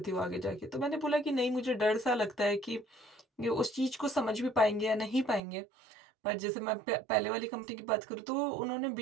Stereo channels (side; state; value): left; drops out; at 5.4 s